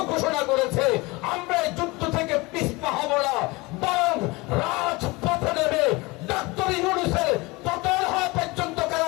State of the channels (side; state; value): right; quieter; 23.9 dB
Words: ঘোষণা করেছে। আমরা এই যুদ্ধ থেকে পিছপা হব না, বরং রাজপথে নেমে ডক্টর ইউনূসের পতন হওয়া পর্যন্ত